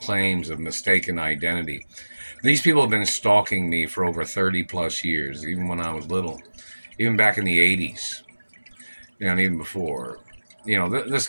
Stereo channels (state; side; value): inverted; both; correlation -1.00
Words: of mistaken identity. These people have been stalking me for over 30 plus years, even when I was little, even back in the 80s, and even before. This